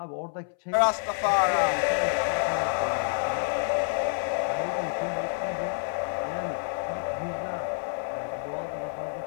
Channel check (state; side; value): silent; right; 59 dB below the other